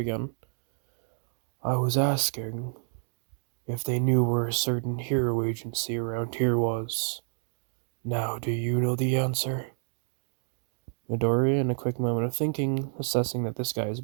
I was asking if they knew where a certain hero agency around here was. Now, do you know the answer? Midoriya, in a quick moment of thinking, assessing that this guy is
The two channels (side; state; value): left; silent; digital silence